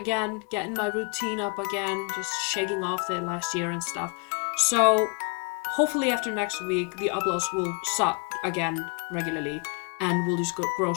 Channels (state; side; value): quieter; right; 34.9 dB